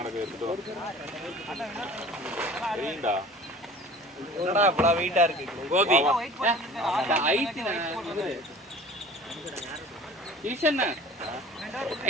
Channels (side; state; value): both; normal; correlation 0.43